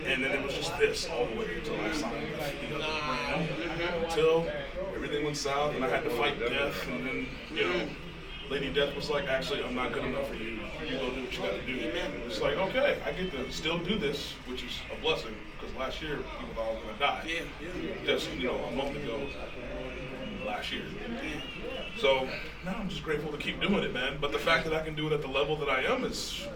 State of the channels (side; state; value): both; identical; correlation 1.00